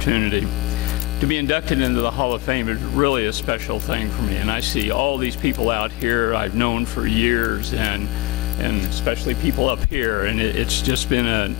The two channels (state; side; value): quieter; right; 20.4 dB